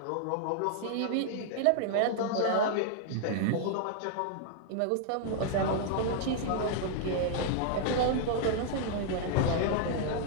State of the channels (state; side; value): different; both; correlation -0.01